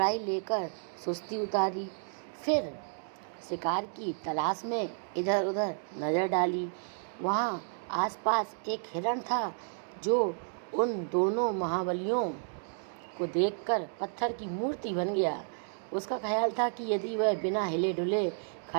लेकर सुस्ती उतारी, फिर शिकार की तलाश में इधर उधर नज़र डाली। वहाँ आसपास एक हिरण था जो उन दोनों महाबलियों को देखकर पत्थर की मूर्ति बन गया। उसका ख्याल था कि यदि वह बिना हिले डुले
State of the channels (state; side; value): silent; left; digital silence